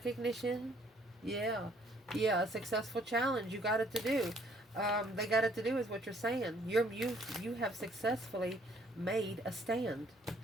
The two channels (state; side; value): normal; both; correlation 0.62